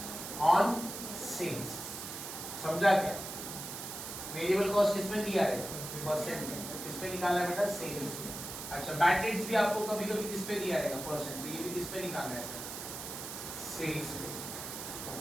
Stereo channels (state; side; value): noise; right; hiss, 8 dB below the sound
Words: ऑन सेल्स, समझा क्या। वेरिएबल कॉस्ट किसमें दिया है, परसेंट में, तो किसमें निकालना है बेटा, सेल्स में। अच्छा, बैड डेट्स भी आपको कभी-कभी किस पे दिया रहेगा, परसेंट, तो ये भी किस पे निकालना है सर, सेल्स पे।